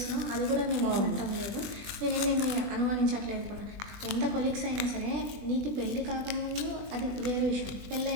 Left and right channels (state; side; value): late; left; 20 ms